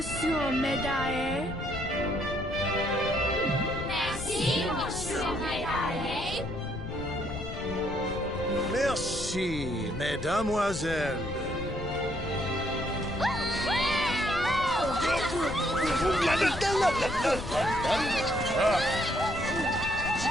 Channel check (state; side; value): noise; left; rumble, 9 dB below the sound